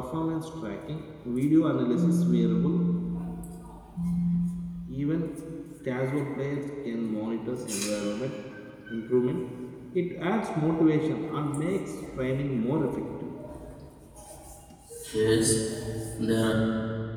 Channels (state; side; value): identical; both; correlation 1.00